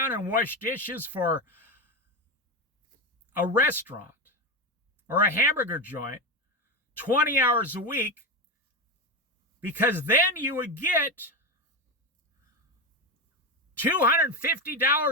and wash dishes for a restaurant or a hamburger joint 20 hours a week, because then you would get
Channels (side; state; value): both; normal; correlation 0.16